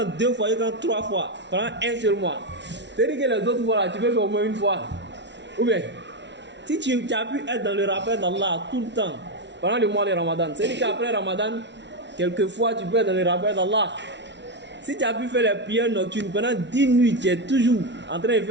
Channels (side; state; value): left; late; 0.51 ms